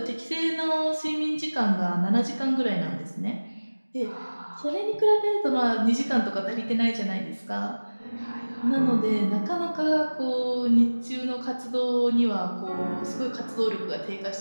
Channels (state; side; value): inverted; both; correlation -1.00